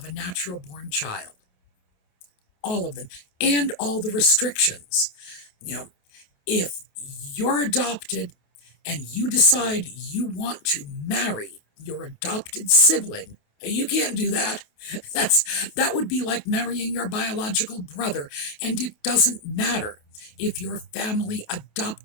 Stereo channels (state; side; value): late; right; 28 ms